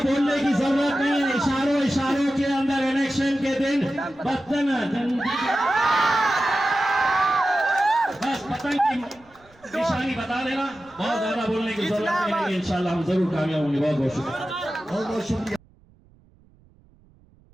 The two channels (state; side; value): noise; right; rumble, 30 dB below the sound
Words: की जरूरत नहीं है, इशारों के अंदर इलेक्शन के दिन बस पतंग की निशानी बता देना, बहुत ज्यादा बोलने की जरूरत नहीं है। इंशाल्लाह हम जरूर कामयाब होंगे। बहुत बहुत शुक्रिया, बहुत बहुत शुक्रिया।